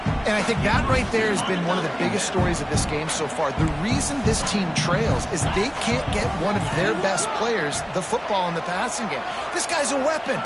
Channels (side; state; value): both; identical; correlation 1.00